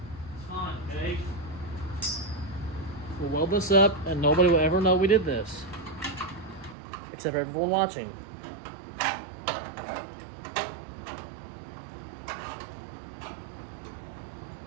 It's fine, okay? We'll weld this up and nobody will ever know we did this. Except everyone watching.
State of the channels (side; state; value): left; drops out; at 6.8 s